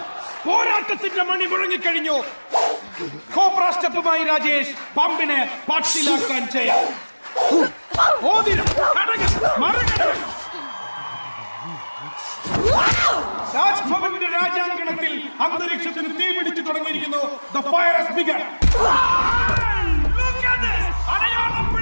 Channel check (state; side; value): inverted; both; correlation -1.00